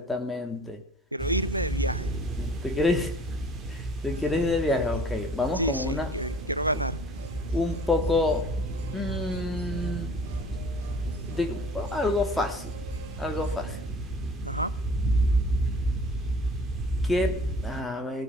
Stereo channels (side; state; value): both; normal; correlation 0.49